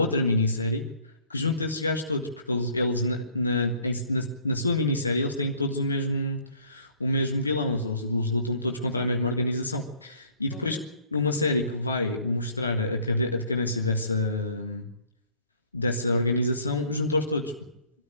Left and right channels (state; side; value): inverted; both; correlation -0.57